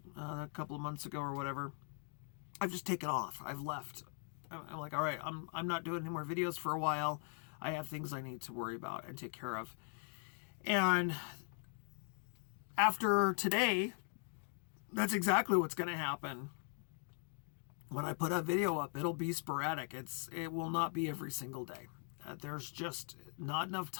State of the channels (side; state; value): right; silent; 51 dB below the other